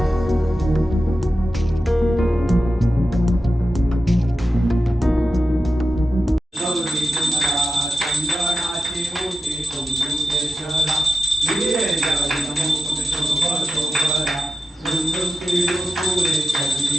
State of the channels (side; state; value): both; normal; correlation 0.90